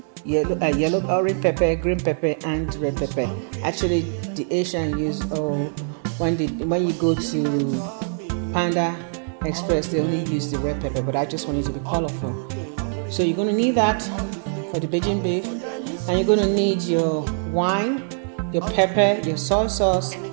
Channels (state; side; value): silent; left; digital silence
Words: yellow, orange pepper, green pepper, and red pepper. Actually, the Asian use when you go to Panda Express, they only use the red pepper, but I just want it to be colorful. So you're going to need that for the Beijing beef, and you're going to need your wine, your pepper, your soy sauce,